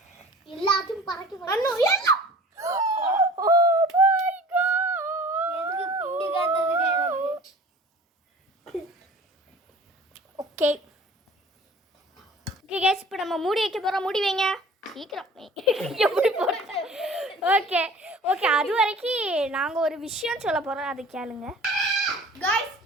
எல்லாத்தையும் பறக்கி ஓகே ஓகே கேஸ், இப்போ நம்ம மூடி வைக்க போகிறோம். மூடி வைங்க சீக்கிரம். எப்படி போடுறது? ஓகே ஓகே, அது வரைக்கும் நாங்கள் ஒரு விஷயம் சொல்ல போகிறோம், அது கேளுங்க காய்ஸ்.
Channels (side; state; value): both; normal; correlation 0.46